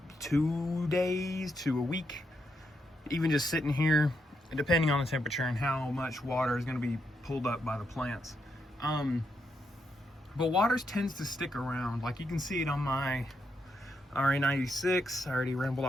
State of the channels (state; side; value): normal; both; correlation 0.81